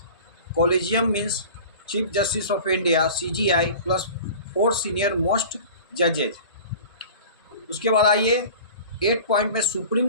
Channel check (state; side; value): inverted; both; correlation -0.40